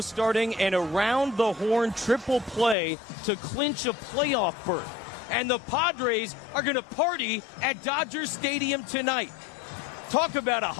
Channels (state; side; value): drops out; right; at 2.8 s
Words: an around-the-horn triple play to clinch a playoff berth. And the Padres are going to party at Dodger Stadium tonight. Talk about a